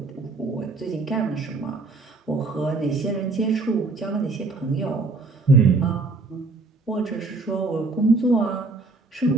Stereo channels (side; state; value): left; quieter; 3.6 dB